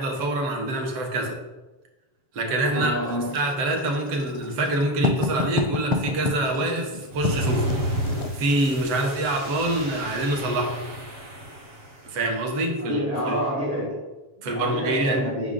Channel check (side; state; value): left; late; 7.3 ms